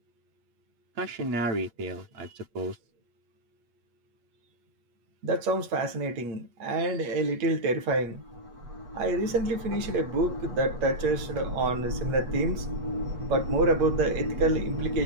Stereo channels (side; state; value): left; late; 8.3 ms